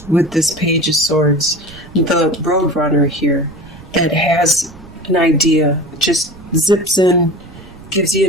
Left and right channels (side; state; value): right; noise; rumble, 20 dB below the sound